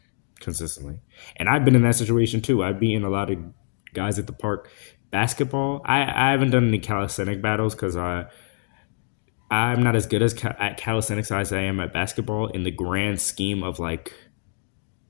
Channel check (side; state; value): right; silent; digital silence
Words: consistently. And I've been in that situation too. I've beaten a lot of guys at the park. Basketball, I haven't done any calisthenic battles because I'm not as good as at calisthenics as I am at basketball in the grand scheme of like